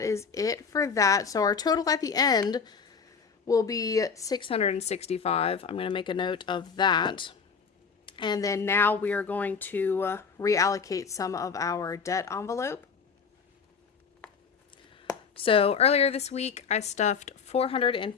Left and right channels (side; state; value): right; quieter; 5.8 dB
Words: is it for that. So our total at the end will be $665. I'm going to make a note of that. And then now we are going to reallocate some of our debt envelope. So earlier this week, I stuffed